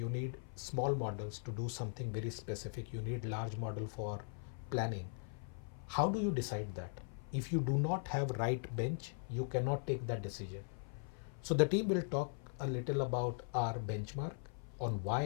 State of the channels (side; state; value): right; silent; 51 dB below the other